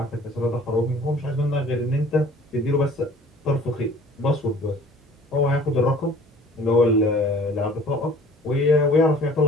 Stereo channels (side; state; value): both; normal; correlation 0.50